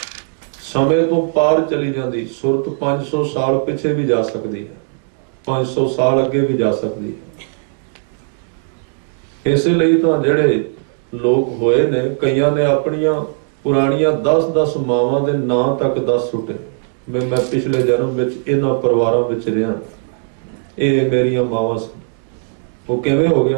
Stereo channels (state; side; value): silent; left; digital silence